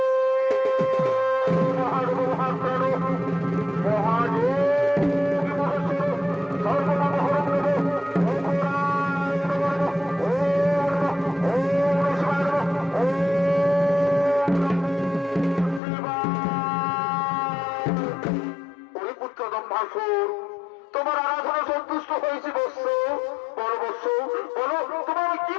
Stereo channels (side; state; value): right; drops out; at 15.8 s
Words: মহানগর মহাপ্রাণ পুত্র দম্ভাসুর তোমার আরাধনা সন্তুষ্ট হয়েছে বৎস বড় বৎস বলো তোমার কি